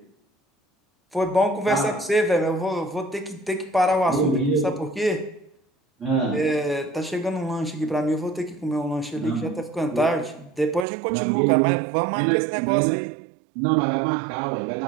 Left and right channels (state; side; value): drops out; left; at 10.9 s